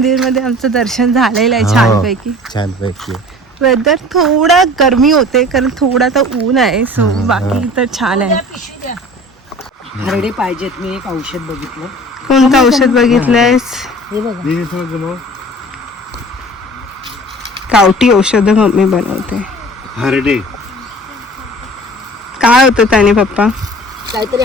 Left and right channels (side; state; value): both; normal; correlation 0.44